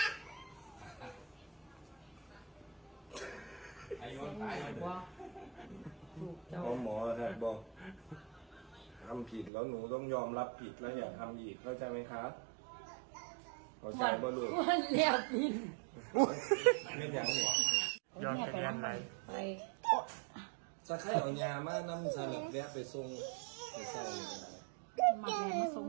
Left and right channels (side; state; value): left; drops out; at 9.5 s